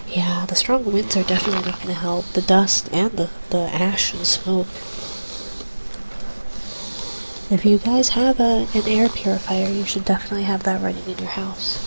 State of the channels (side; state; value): both; inverted; correlation -1.00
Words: Yeah, the strong winds are definitely not going to help. The dust and the ash and smoke. If you guys have an air purifier, you should definitely have that running in your house.